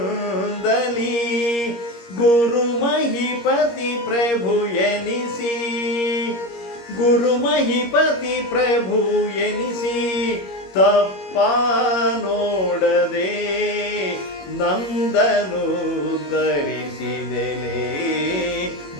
ಗುರು ಮಹಿಪತಿ ಪ್ರಭು ಎನಿಸಿ ಗುರು ಮಹಿಪತಿ ಪ್ರಭು ಎನಿಸಿ ತಪ್ಪ ನೋಡದೆ ನಂದನು ಧರಿಸಿದೆಲೆ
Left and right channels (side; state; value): right; late; 21 ms